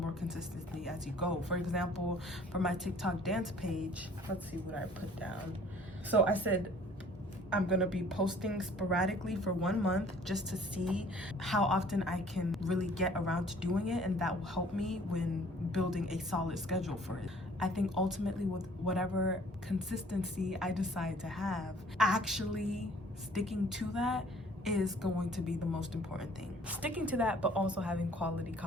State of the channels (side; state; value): both; normal; correlation 0.54